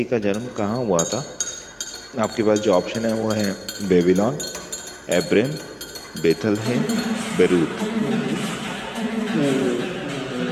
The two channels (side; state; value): both; identical; correlation 1.00